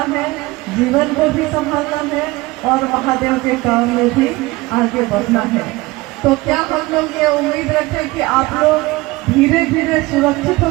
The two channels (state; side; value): quieter; left; 21.0 dB